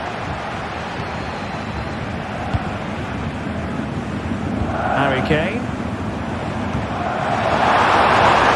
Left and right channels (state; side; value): identical; both; correlation 1.00